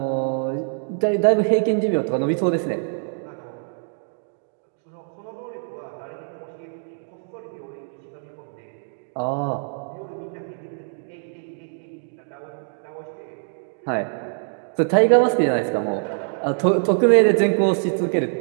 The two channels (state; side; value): silent; left; digital silence